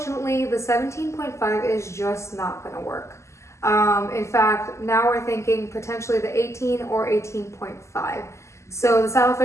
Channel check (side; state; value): right; late; 0.13 ms